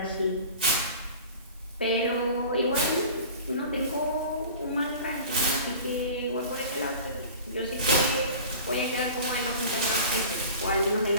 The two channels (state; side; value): inverted; both; correlation -0.40